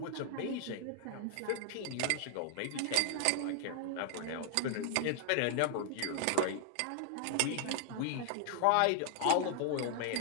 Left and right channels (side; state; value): both; different; correlation 0.00